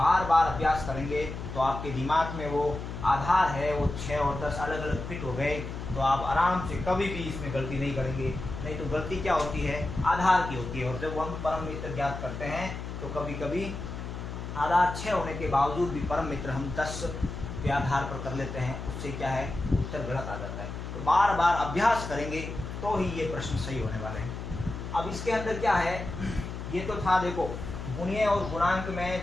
बार अभ्यास करेंगे तो आपके दिमाग में वो आधार है वो 6 और 10 अलग अलग फिट हो गए, तो आप आराम से कभी भी इसमें गलती नहीं करेंगे। नहीं तो गलती क्या होती है, आधार की होती है। और जब हम परम मित्र ज्ञात करते हैं तो कभी कभी आधार 6 होने के बावजूद भी परम मित्र हम 10 के आधार पर कर लेते हैं, उससे क्या है, उत्तर गलत आ जाता है। तो बार बार अभ्यास करेंगे तो ही ये प्रश्न सही होने वाले हैं। अब इसके अंदर क्या है, ये तो था देखो गुणीय और गुणांक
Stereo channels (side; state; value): left; noise; hum, 7 dB below the sound